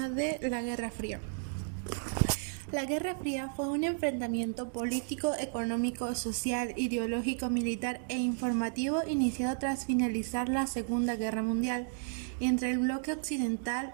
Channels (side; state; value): left; silent; digital silence